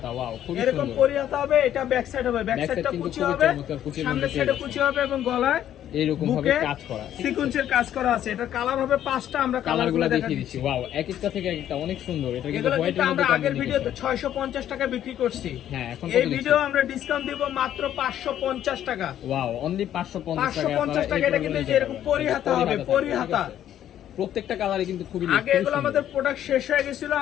এরকম পরিহাতা হবে, এটা ব্যাক সাইড হবে, ব্যাক সাইডটা কুচি হবে, সামনের সাইডে কুচি হবে এবং গলায় এরকম ভাবে কাজ করা, সিকোয়েন্সের কাজ করা আছে। এটা কালার হবে 5টা, আমরা কালারগুলো দেখিয়ে দিচ্ছি। ওয়াও, এক একটা থেকে একটা অনেক সুন্দর। এটা কিন্তু এগুলো হোয়াইটের মধ্যে আমরা আগের ভিডিওতে 650 টাকা বিক্রি করছি। হ্যাঁ, এখন এই ভিডিও আমরা ডিসকাউন্ট দিব মাত্র 550 টাকা। ওয়াও, অনলি 550 টাকা। এটা কিন্তু এরকম পরিহাতা হবে, পরিহাতা। প্রত্যেকটা কালারে কিন্তু খুবই আগে এগুলো আমাদের প্রোডাক্ট শেষ হয়ে গেছিল,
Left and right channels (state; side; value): quieter; right; 11.1 dB